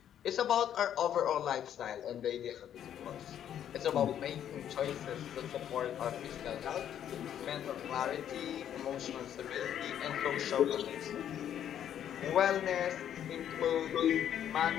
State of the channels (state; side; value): quieter; right; 10.0 dB